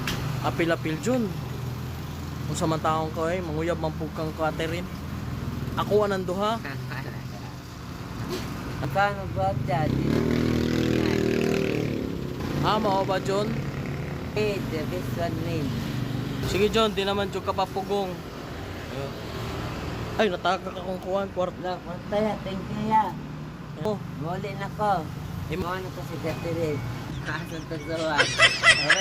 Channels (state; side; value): identical; both; correlation 1.00